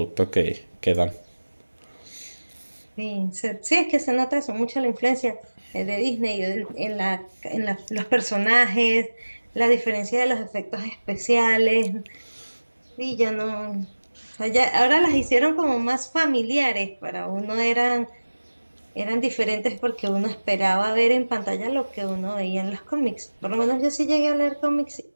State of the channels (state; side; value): inverted; both; correlation -1.00